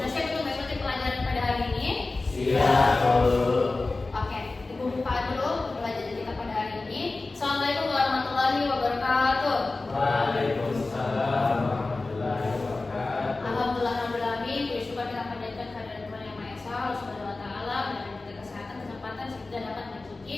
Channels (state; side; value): quieter; right; 3.4 dB